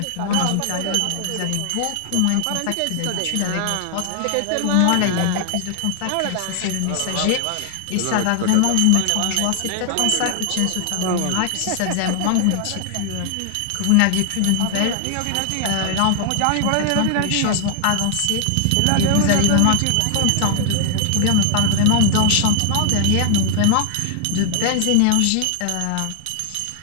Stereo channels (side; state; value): both; different; correlation 0.00